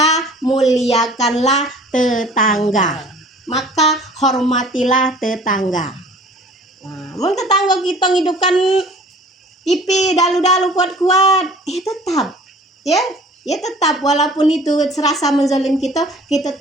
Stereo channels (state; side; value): normal; both; correlation 0.49